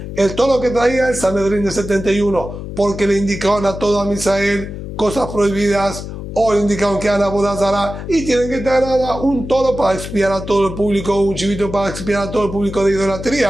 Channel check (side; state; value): left; noise; hum, 9 dB below the sound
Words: el toro que traía el Sanedrín de 71, porque le indicaban a todo a Misael cosas prohibidas, o le indicaron que eran abodazara y tienen que traer un toro para expiar a todo el público, un chivito para expiar a todo el público de